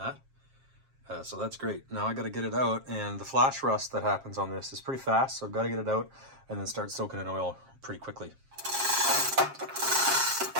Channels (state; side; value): late; left; 7.5 ms